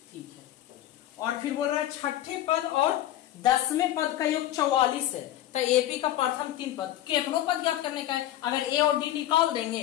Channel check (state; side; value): quieter; right; 13.3 dB